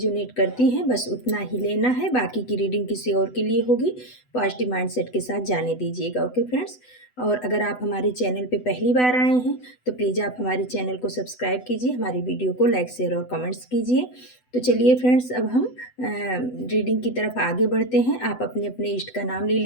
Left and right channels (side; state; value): right; late; 8.0 ms